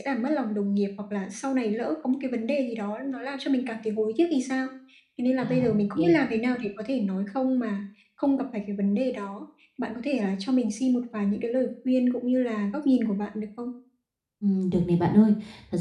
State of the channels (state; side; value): identical; both; correlation 1.00